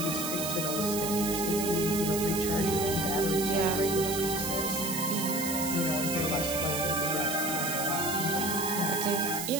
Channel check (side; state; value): right; noise; hiss, 4 dB below the sound